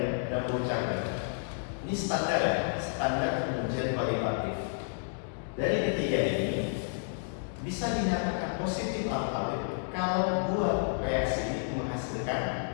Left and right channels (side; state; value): right; silent; digital silence